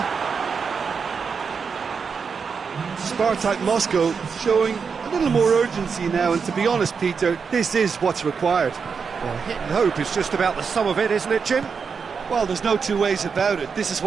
SPARTAK Moscow showing a little more urgency now, and to be honest, Peter, this is what's required. Well, hit and hope is just about the sum of it, isn't it, Jim? Well, there's no two ways about it. This is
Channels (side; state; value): left; quieter; 5.8 dB